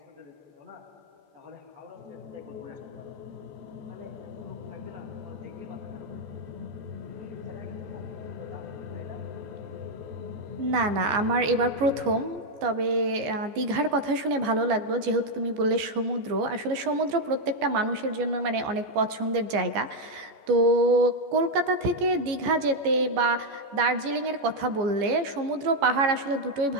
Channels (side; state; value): left; late; 14 ms